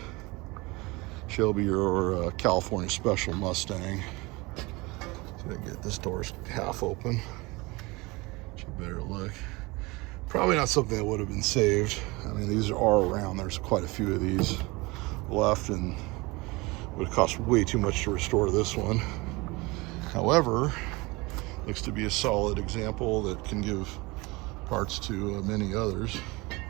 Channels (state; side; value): quieter; left; 24.0 dB